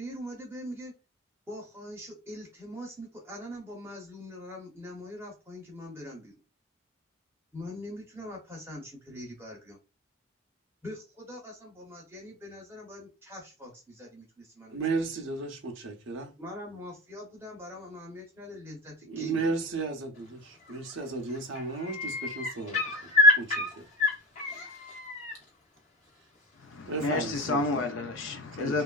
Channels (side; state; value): both; normal; correlation 0.28